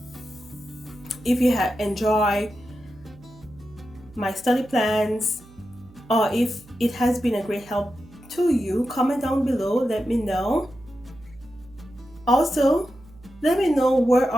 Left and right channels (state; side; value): noise; right; hum, 24 dB below the sound